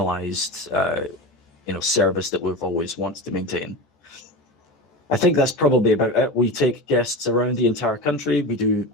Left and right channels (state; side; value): normal; both; correlation 0.26